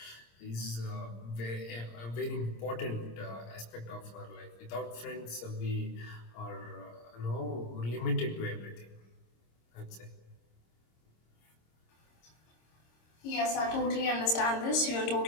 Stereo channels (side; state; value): right; late; 26 ms